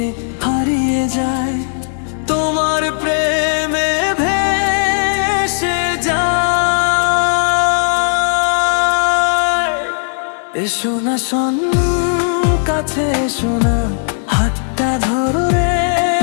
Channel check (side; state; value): right; silent; 69 dB below the other